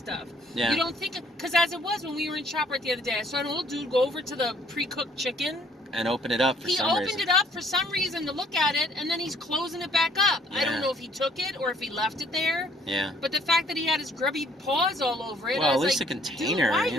Yeah. You don't think... Because as it was when we were in ShopRite the other day, I saw an old dude go over to the pre-cooked chicken. And open it up for some reason. He opened it up for some reason to look at it, and then he's closing it back up. Yeah. I don't know if he took it or if he left it there. Yeah. But the fact that he had his grubby paws all over it, well, I was at least like, the container. Dude, why are you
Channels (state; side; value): normal; both; correlation 0.60